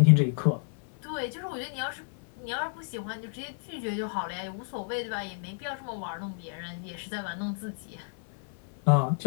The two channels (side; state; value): right; silent; 57 dB below the other